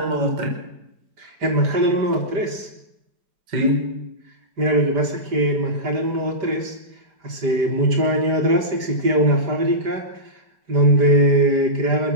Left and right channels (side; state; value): left; late; 5.0 ms